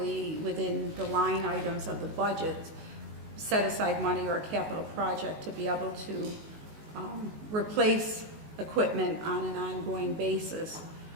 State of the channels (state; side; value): late; left; 19 ms